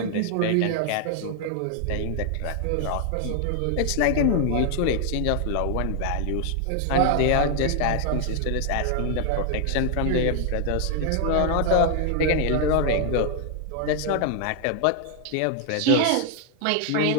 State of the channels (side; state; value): both; different; correlation 0.00